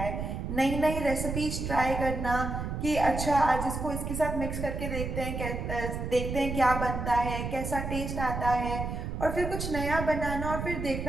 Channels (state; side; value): noise; right; rumble, 4 dB below the sound